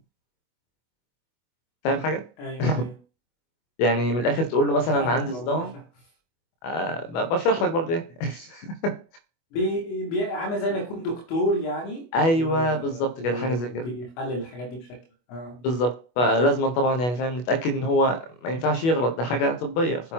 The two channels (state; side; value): late; right; 24 ms